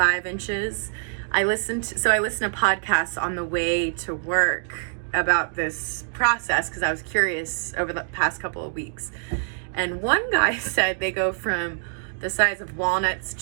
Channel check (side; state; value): left; silent; digital silence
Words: inches. I listened to podcasts on the way to work about this process because I was curious over the past couple of weeks. And one guy said they go from the size of walnuts